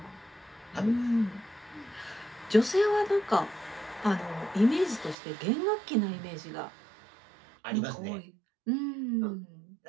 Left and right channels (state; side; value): drops out; left; at 5.2 s